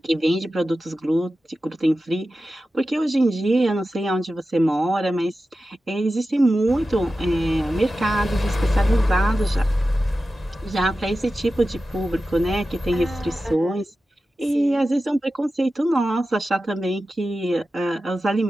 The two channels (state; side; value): normal; both; correlation 0.93